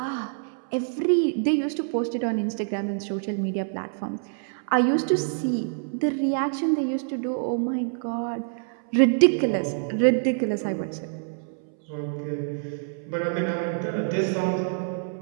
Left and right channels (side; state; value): left; silent; 61 dB below the other